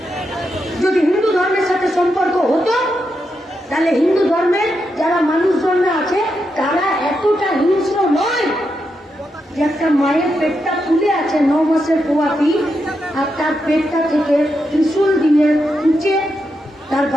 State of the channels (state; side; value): normal; both; correlation 0.84